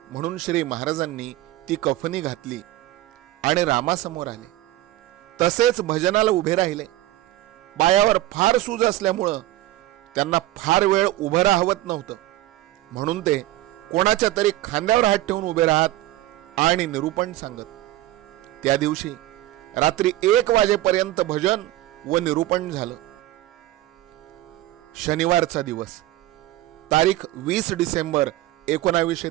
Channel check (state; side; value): quieter; left; 15.8 dB